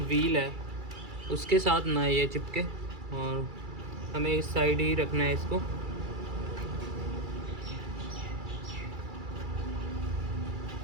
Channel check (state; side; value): late; left; 2.3 ms